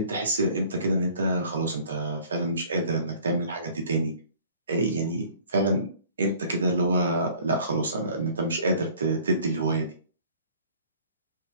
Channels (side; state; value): both; inverted; correlation -0.52